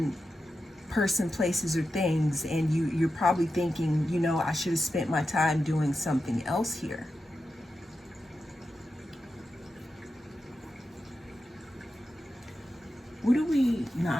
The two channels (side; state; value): both; normal; correlation 0.90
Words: person, places, or things, and you're probably thinking, I should have spent my time doing something else here. What do we